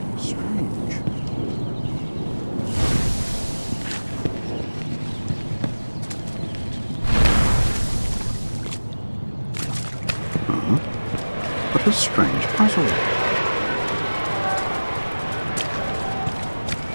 Strange. What a strange puzzle.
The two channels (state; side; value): inverted; both; correlation -1.00